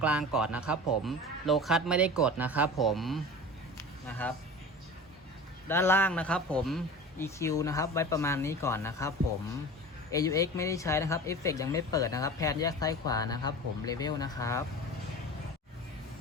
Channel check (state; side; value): normal; both; correlation 0.35